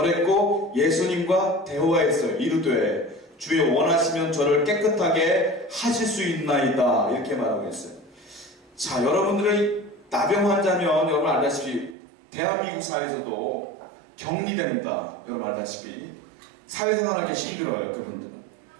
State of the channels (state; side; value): drops out; left; at 12.0 s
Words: 예수님과 대화했어요. 이르되 주여 원하시면 저를 깨끗하게 하실 수 있나이다 이렇게 말하고 있어요. 자, 여러분들의 나병 환자면 여러분 알다시피 대한민국 사회에서도 격리됩니다. 여러분 알다시피 사회생활하기 힘들어요. 그분들은.